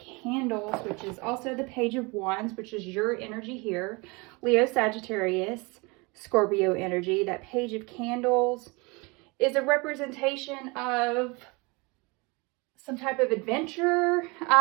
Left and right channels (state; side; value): quieter; left; 27.4 dB